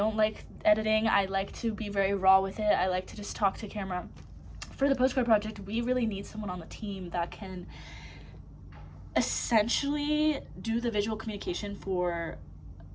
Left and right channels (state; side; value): identical; both; correlation 1.00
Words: like editing. I like to be very raw with it. I like to just talk to camera. For the Postcard Project, we really need someone on the team that can essentially do the visual communication for